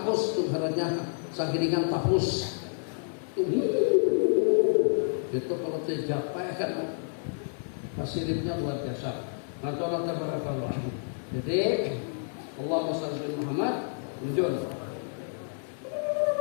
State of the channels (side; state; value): right; silent; 58 dB below the other